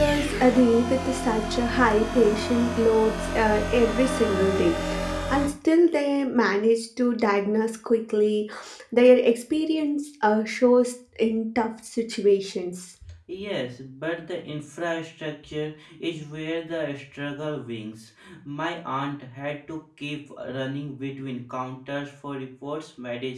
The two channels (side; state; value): both; identical; correlation 1.00